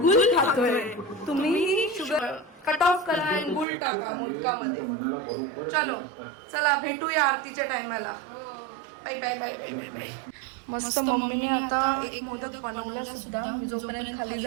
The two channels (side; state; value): left; drops out; at 3.7 s